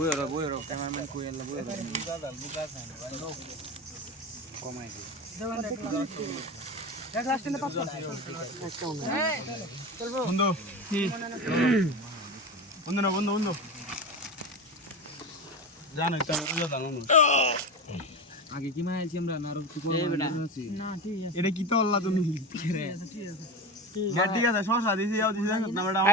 বইরো ক্যামেরাম্যান কই এলা বইরো বুকা খান কমাই দি এক গ্লাস টিনে 500 এই চলবো বন্ধু বন্ধু না বন্ধু জানো একটা রোজা জানো আগে কি মাইছি আমরা না আর কি করব না ঠিক আছে এটা কি তো আল্লাহ তুমি ঠিক আছে গাড়ি আছে শশা দিছি যাও দিছি না ম্যাডাম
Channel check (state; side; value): normal; both; correlation 0.23